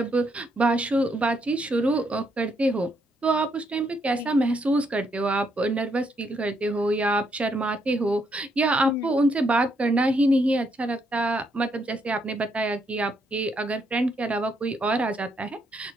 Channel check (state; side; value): normal; both; correlation 0.75